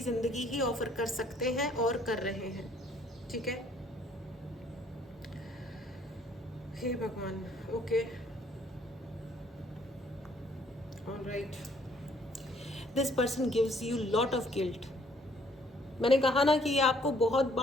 ज़िंदगी ही ऑफर कर सकते हैं और कर रहे हैं, ठीक है। हे भगवान, okay, alright. This person gives you lot of guilt. मैंने कहा ना कि ये आपको बहुत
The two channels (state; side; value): normal; both; correlation 0.63